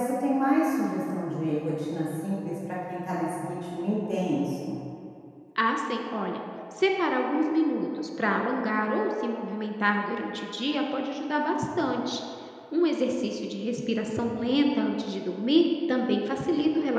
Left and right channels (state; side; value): identical; both; correlation 1.00